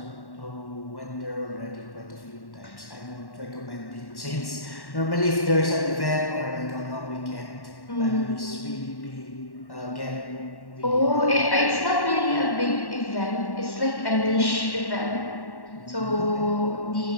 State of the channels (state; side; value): late; right; 1.1 ms